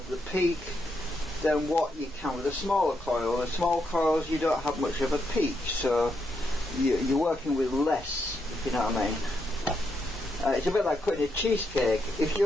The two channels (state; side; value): normal; both; correlation 0.80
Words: the peak than what you can with a smaller coil. The small coils, you don't have much of a peak, so you're working with less, if you know what I mean. It's a bit like cutting a cheesecake. If